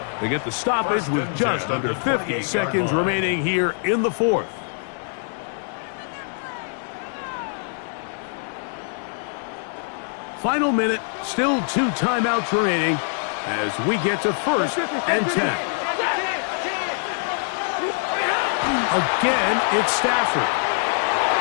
They get the stoppage with just under 50 seconds remaining here in the 4th. Final minute, still 2 timeouts remaining as we get to 1st and 10. Again, it's Stafford.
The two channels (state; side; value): silent; right; 60 dB below the other